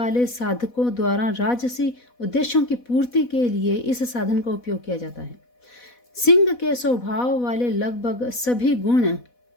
साधकों द्वारा राजसी उद्देश्यों की पूर्ति के लिए इस साधन का उपयोग किया जाता है। सिंह के स्वभाव वाले लगभग सभी गुण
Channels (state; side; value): late; right; 4.1 ms